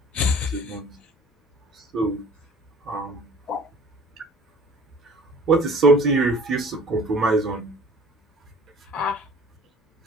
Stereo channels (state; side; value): normal; both; correlation 0.48